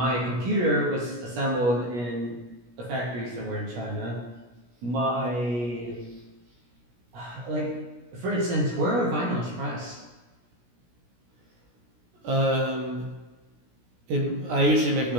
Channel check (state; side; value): late; left; 17 ms